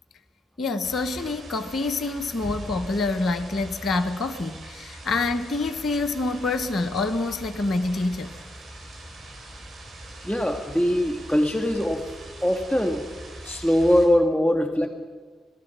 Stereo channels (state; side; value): normal; both; correlation 0.86